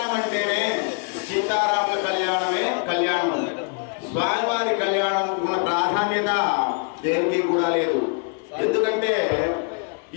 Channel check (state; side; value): quieter; right; 38.9 dB